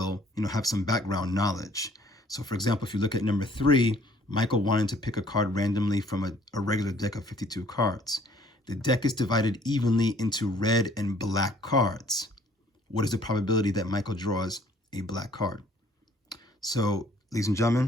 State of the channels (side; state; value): both; normal; correlation 0.59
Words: have some background knowledge. So, for example, if you look at number 3, Michael wanted to pick a card randomly from a regular deck of 52 cards. The deck is divided evenly into red and black cards. What is the probability that Michael draws a black card? So, ladies and